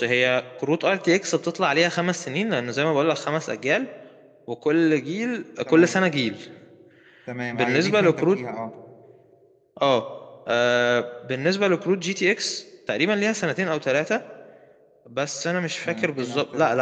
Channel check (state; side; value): identical; both; correlation 1.00